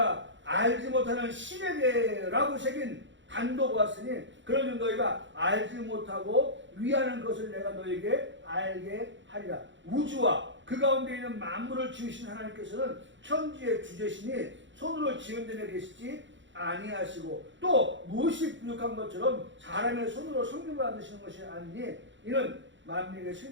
알지 못하는 신에 대해라고 새긴 단도 보았으니 그러면 너희가 알지 못하고 위하는 것을 내가 너희에게 알게 하리라. 우주와 그 가운데 있는 만물을 지으신 하나님께서는 천지의 주제시니 손으로 지은 데에 계시지 아니하시고 또 무엇이 부족한 것처럼 사람의 손으로 성경을 만드시는 것이 아니니 이는 만민의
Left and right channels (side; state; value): left; late; 0.54 ms